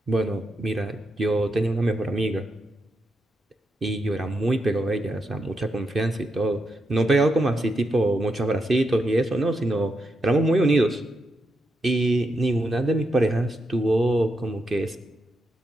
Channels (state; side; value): normal; both; correlation 0.83